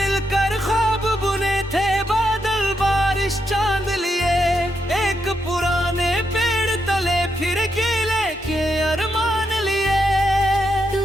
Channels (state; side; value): normal; both; correlation 0.81